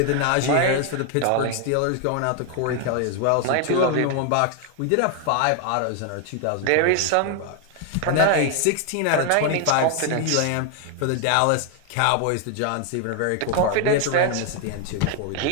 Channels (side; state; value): both; different; correlation 0.00